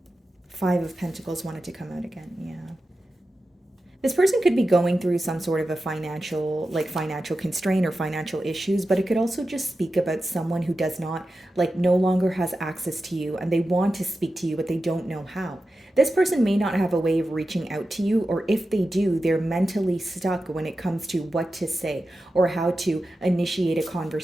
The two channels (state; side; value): normal; both; correlation 0.92